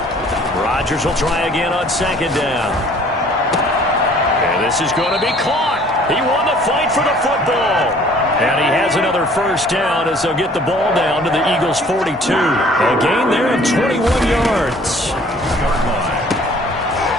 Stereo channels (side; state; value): both; normal; correlation 0.55